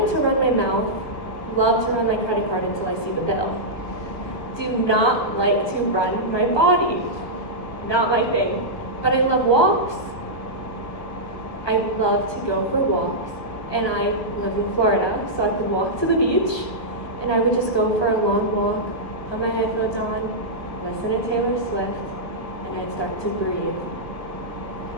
to run my mouth, love to run my credit card until I see the bill. Do not like to run my body. Not my thing. But I love walks. I love to go for walks. And I live in Florida, so I could walk to the beach, and I would just go for a long walk, put my headphones on, listen to Taylor Swift, and I'd start to breathe.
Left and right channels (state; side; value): late; right; 1.6 ms